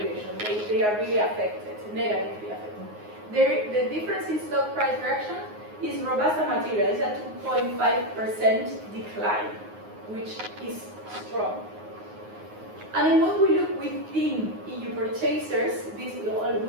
They are really affected, negatively affected. The difference in stock price reaction is Robusta material. It's a 2.5% decline, which is strong. And then when we look within EU purchasers, we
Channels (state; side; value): late; left; 9.5 ms